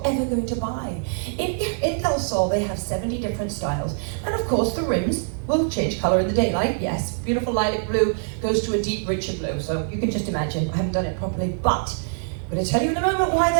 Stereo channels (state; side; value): silent; left; 58 dB below the other